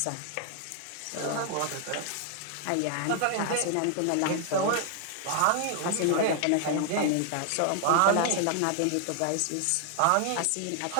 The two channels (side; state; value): both; different; correlation 0.00